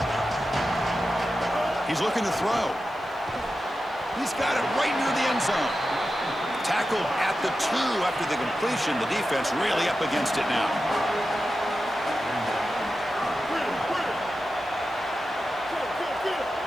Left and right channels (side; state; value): left; noise; hiss, 30 dB below the sound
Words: He's looking to throw. He's got it right near the end zone. Tackled at the 2 after the completion. The defense really up against it now.